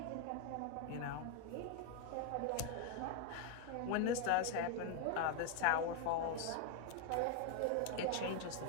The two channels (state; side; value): different; both; correlation 0.01